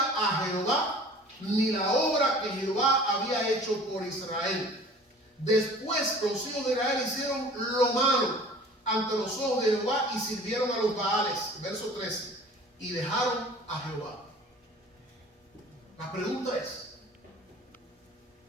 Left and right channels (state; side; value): normal; both; correlation 0.46